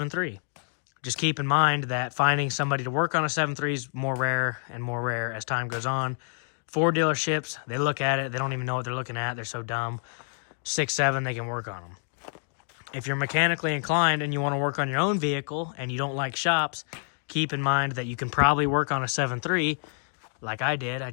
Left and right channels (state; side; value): silent; right; 60 dB below the other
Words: Just keep in mind that finding somebody to work on a 7.3 is more rare and more rare as time goes on. Ford dealerships, they look at it, they don't even know what they're looking at, they're so dumb. 6.7, they can work on them. If you're mechanically inclined and you want to work on your own vehicle and you don't like shops, keep in mind that you can probably work on a 7.3 like I did. I